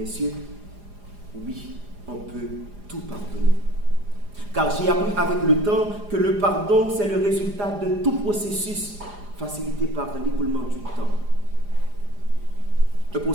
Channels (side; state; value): left; late; 4.9 ms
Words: oui, on peut tout pardonner. Car j'ai appris avec le temps que le pardon, c'est le résultat de tout processus facilité par l'écoulement du temps. Un